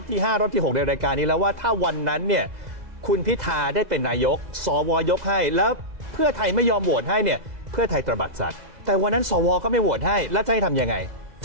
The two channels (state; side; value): late; left; 2.0 ms